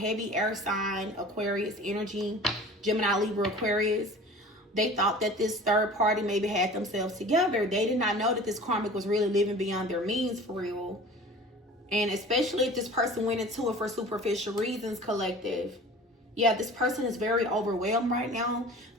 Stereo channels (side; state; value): both; normal; correlation 0.42